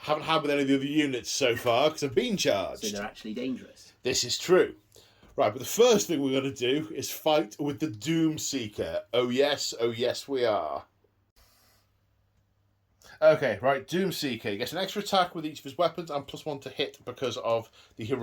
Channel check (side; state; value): both; identical; correlation 1.00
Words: haven't had with any of the other units so far because I've been charged. So they're actually dangerous. This is true. Right, but the first thing we're going to do is fight with the Doomseeker. Oh yes we are. Okay, right, Doomseeker. He gets an extra attack with each of his weapons and +1 to hit because of the